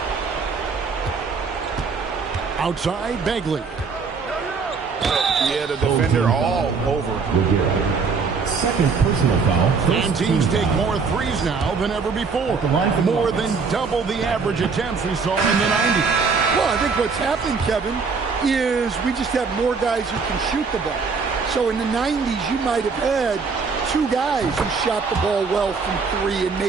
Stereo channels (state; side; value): quieter; left; 5.0 dB